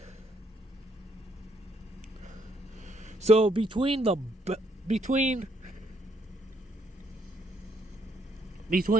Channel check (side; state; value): both; normal; correlation 0.71